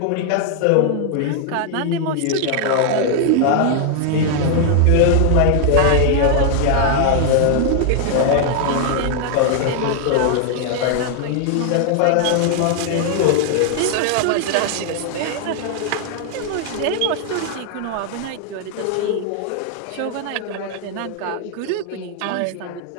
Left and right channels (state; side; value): different; both; correlation 0.00